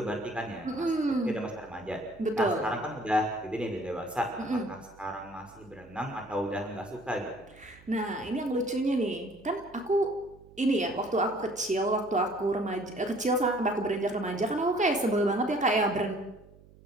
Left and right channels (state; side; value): noise; right; hum, 24 dB below the sound